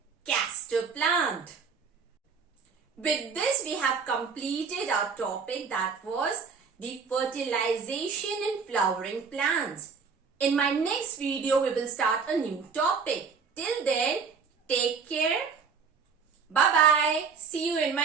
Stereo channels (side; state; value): left; quieter; 5.7 dB